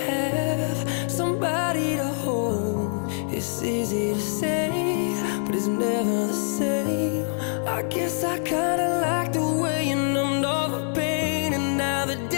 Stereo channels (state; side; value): silent; right; digital silence